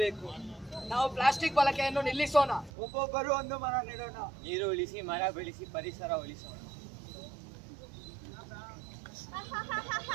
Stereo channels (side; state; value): left; drops out; at 2.7 s